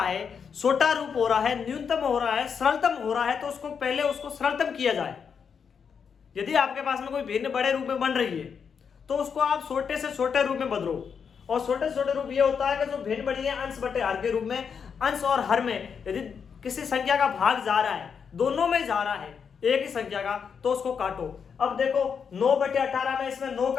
है, छोटा रूप हो रहा है, न्यूनतम हो रहा है, सरलतम हो रहा है, तो उसको पहले उसको सरलतम किया जाए। यदि आपके पास में कोई भिन्न बड़े रूप में बन रही है तो उसको आप छोटे से छोटे रूप में बदलो। और छोटे से छोटे रूप ये होता है कि जो भिन्न बड़ी है अंश बटे हर के रूप में, अंश और हर में यदि किसी संख्या का भाग जा रहा है, दोनों में जा रहा है एक ही संख्या का, तो उसको काटो। अब देखो 9/18 में इसमें 9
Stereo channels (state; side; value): quieter; right; 6.6 dB